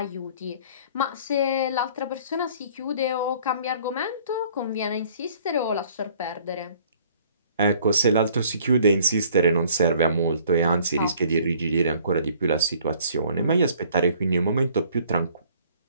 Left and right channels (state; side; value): inverted; both; correlation -0.56